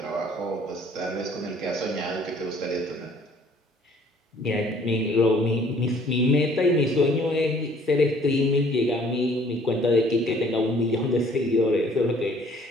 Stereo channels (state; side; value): normal; both; correlation 0.58